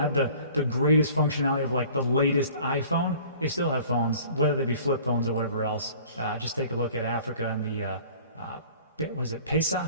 the greatest functionality of like the latest iPhone, they still have phones, whether they be flip phones or whatever else. Just take a look at Africa and the, what is it, Pesa?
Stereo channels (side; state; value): both; inverted; correlation -0.49